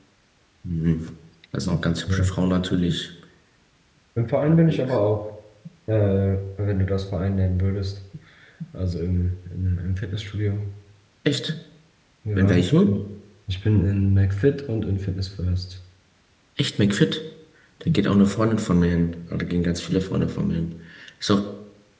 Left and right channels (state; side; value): identical; both; correlation 1.00